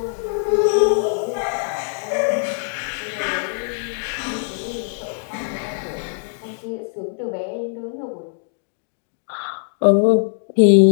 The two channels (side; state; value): right; silent; digital silence